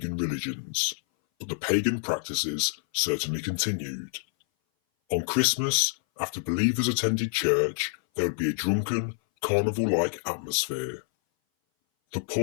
religions, but the pagan practices certainly continued. On Christmas, after believers attended church, there would be a drunken, carnival-like atmosphere. The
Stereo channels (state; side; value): silent; right; 58 dB below the other